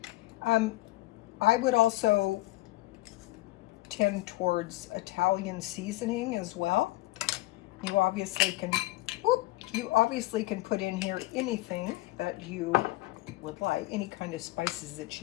I would also tend towards Italian seasoning as well. You obviously can put in here anything that you would like, any kind of spices that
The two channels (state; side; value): quieter; right; 18.5 dB